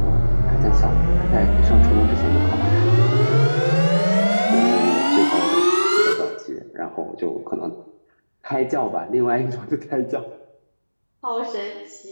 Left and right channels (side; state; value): both; inverted; correlation -1.00